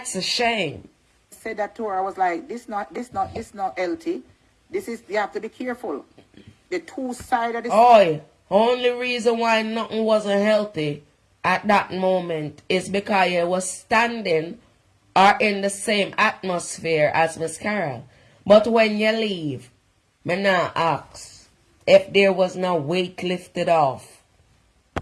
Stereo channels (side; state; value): both; identical; correlation 1.00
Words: a shame. I said that to her. I was like, this not healthy. This is, you have to be careful. The two sides of the. Oh, only reason why nothing wasn't healthy at that moment is because you was standing or in the same atmosphere as Miss Carol. But when you leave, me now ask if there was no weight lifted off.